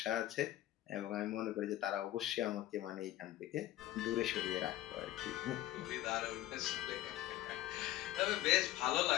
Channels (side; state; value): right; quieter; 14.6 dB